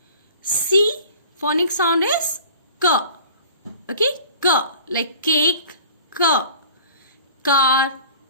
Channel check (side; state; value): both; inverted; correlation -0.46